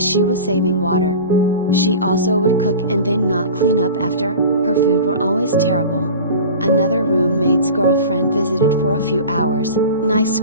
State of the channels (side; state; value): both; inverted; correlation -0.36